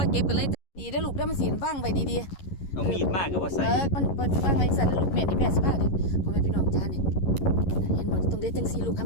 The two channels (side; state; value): right; late; 11 ms